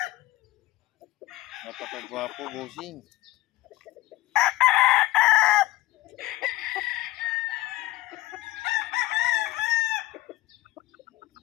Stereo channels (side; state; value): right; quieter; 17.7 dB